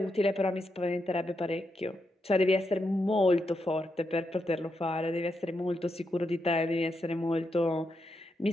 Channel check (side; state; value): both; normal; correlation 0.84